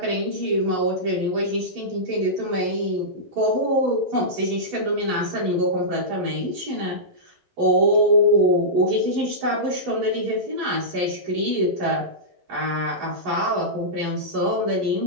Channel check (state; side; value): late; left; 11 ms